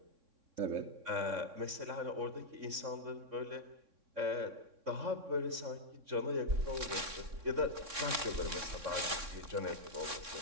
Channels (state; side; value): late; left; 3.6 ms